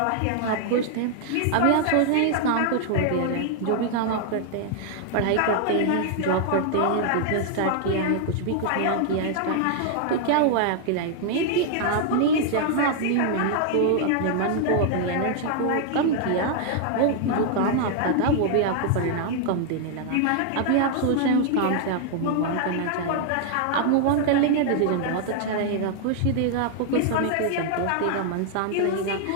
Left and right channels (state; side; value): different; both; correlation 0.00